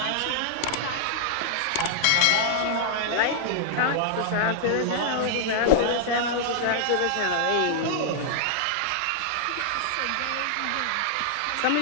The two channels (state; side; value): different; both; correlation -0.01